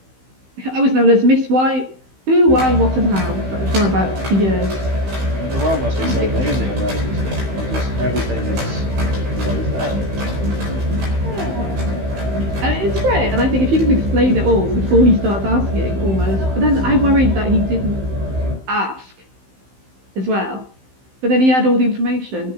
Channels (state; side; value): late; left; 15 ms